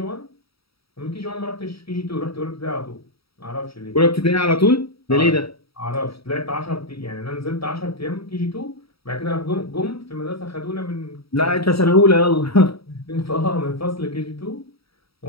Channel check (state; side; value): late; right; 0.76 ms